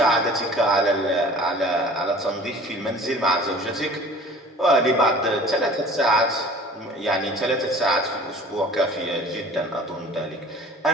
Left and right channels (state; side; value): normal; both; correlation 0.46